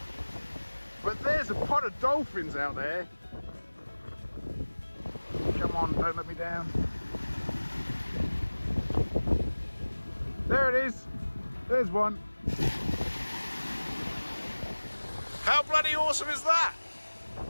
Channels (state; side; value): inverted; both; correlation -1.00